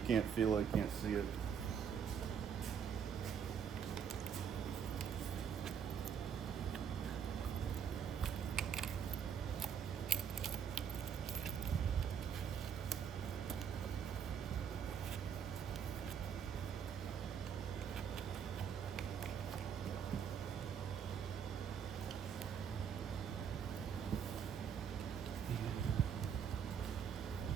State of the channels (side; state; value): left; quieter; 7.6 dB